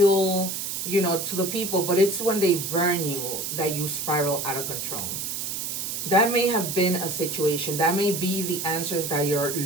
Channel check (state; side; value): noise; right; hiss, 4 dB below the sound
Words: to the people. But it's when they burn you that you spiral out of control. That may have been a situation. That may be the answers that you're